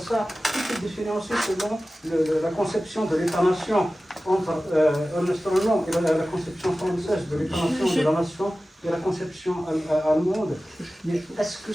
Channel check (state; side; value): normal; both; correlation 0.96